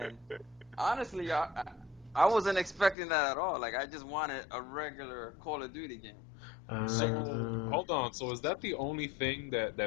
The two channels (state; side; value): drops out; right; at 3.0 s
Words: honestly, I wasn't expecting that at all. Like I just wanted a regular Call of Duty game. Like So Uh, hold on. So is that the only thing